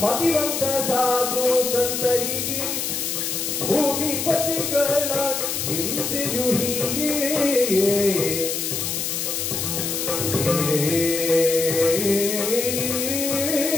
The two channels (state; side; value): noise; left; hiss, 2 dB below the sound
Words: ಮತಿವಂತ ಸಾಧು ಸಂತರಿಗೆ ಭೂಮಿಪತಿಗಳ ಹಿಂಸೆಯು ಹೀಗೆ